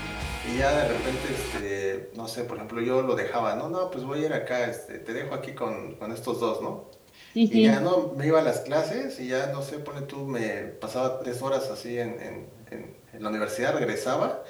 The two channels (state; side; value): identical; both; correlation 1.00